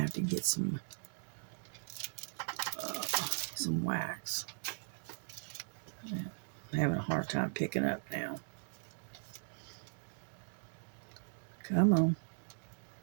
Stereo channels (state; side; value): silent; left; digital silence